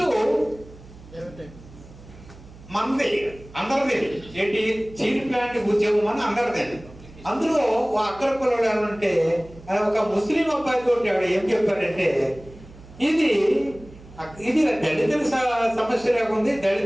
మనది, అందరిది. ఏంటి స్టీల్ ప్లాంట్ ఉద్యమం అని అందరిది. అందులో అగ్రకులాలు ఏమంటే ఒక ముస్లిం అబ్బాయి తోటి ఆవిడ ఏం చెప్పారంటే, ఇది దళితుల సమస్య లేకుంది,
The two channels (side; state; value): right; noise; hum, 20 dB below the sound